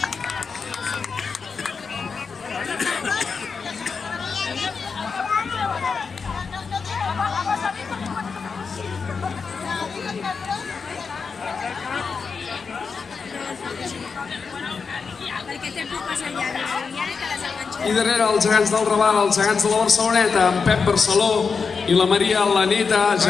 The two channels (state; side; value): quieter; right; 5.3 dB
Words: I darrere els gegants del Raval, els gegants de la Barceloneta, en Pep Barceló i la Maria Laneta,